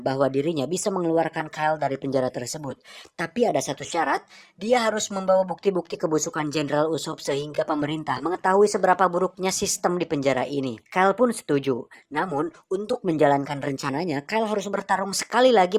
dirinya bisa mengeluarkan Kyle dari penjara tersebut. Tapi ada satu syarat, dia harus membawa bukti-bukti kebusukan Jenderal Usopp sehingga pemerintah mengetahui seberapa buruknya sistem di penjara ini. Kyle pun setuju. Namun, untuk menjalankan rencananya, Kyle harus bertarung sekali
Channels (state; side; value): identical; both; correlation 1.00